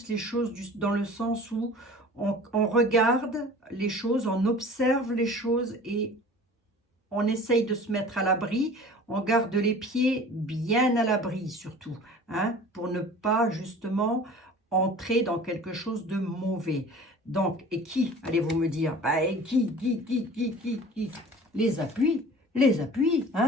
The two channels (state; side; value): normal; both; correlation 0.43